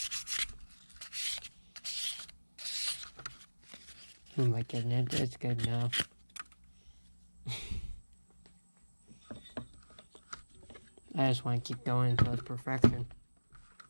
Oh my goodness, it's good now. I just want to keep going until it's perfection.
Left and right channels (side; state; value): both; inverted; correlation -1.00